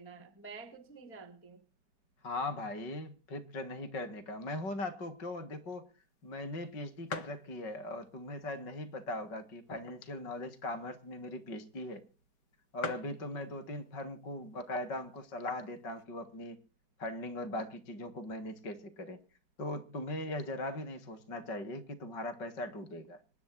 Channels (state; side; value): late; right; 5.1 ms